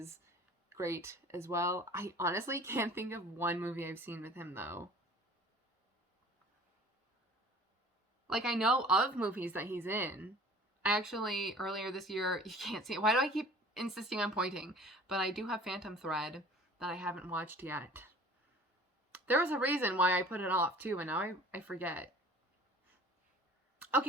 great as well. I honestly can't think of one movie I've seen with him, though. Like, I know of movies that he's in. I actually, earlier this year, you can't see it. Why do I keep insisting on pointing? But I do have Phantom Thread that I haven't watched yet. There was a reason why I put it off, too, and now I forget.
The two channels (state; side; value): normal; both; correlation 0.46